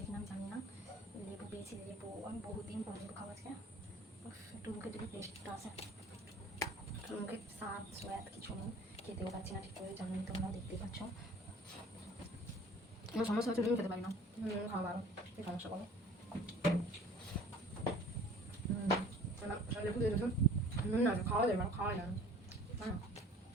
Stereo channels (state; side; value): normal; both; correlation 0.48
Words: নাম জানি না। লেবু পেয়েছি, লেবু আমি বহুদিন পর লেবু খাওয়া আজকে, একটু মুখে যদি টেস্টটা আসে, মুখে স্বাদ সোয়াদ কিছু নেই, খেতেও পাচ্ছি না ঠিক করে, জানি তোমরা দেখতে পাচ্ছ। আমার সমস্যা হচ্ছে নুন খেতে পারি না, খাওয়া ভালো, এই সমস্যা করো। লেবু দিয়ে দিয়েছো, নুন না খাওয়া যায় না, খাওয়াই না, হ্যাঁ